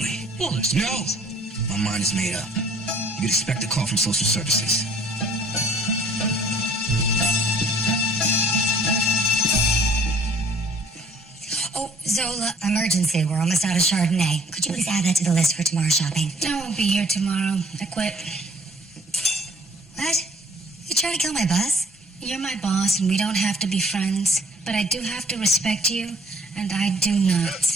Wallace, No! My mind is made up. You could expect a call from social services. Oh, Zola, emergency. We're almost out of Chardonnay. Could you please add that to the list for tomorrow's shopping? I won't be here tomorrow. I quit. What? You trying to kill my buzz? You're my boss, and we don't have to be friends. But I do have to respect you, and I do not.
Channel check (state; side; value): normal; both; correlation 0.57